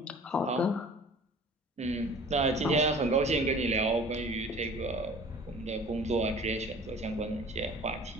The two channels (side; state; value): both; normal; correlation 0.46